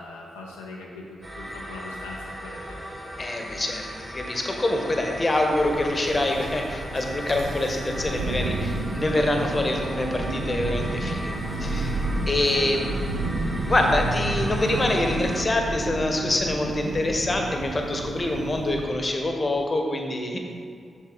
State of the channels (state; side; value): normal; both; correlation 0.87